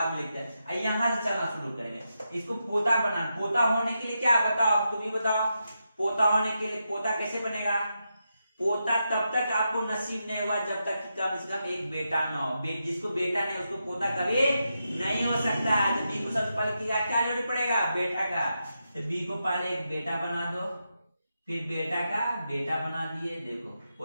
में लिखते हैं। यहाँ से चलना शुरू करेंगे, इसको पोता बना, पोता होने के लिए क्या बताओ, तुम ही बताओ, पोता होने के लिए पोता कैसे बनेगा, पोता तब तक आपको नसीब नहीं हुआ जब तक कि कम से कम एक बेटा ना हो। जिसको बेटा नहीं उसको पोता कभी नहीं हो सकता। तो बी को सबसे पहले क्या जरूरी पड़ेगा, बेटा का। तो बी को पहले एक बेटा बना दो, फिर बेटा का बेटा बना दिए, देखो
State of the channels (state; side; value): inverted; both; correlation -0.86